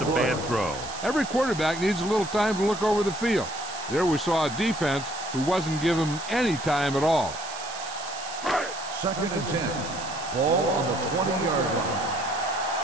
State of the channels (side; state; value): right; noise; hiss, 12 dB below the sound